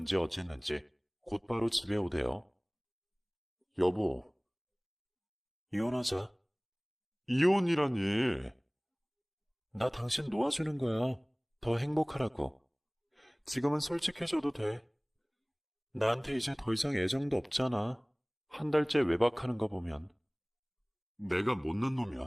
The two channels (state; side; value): identical; both; correlation 1.00